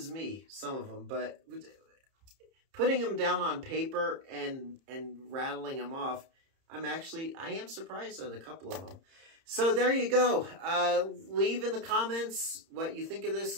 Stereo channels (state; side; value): late; left; 30 ms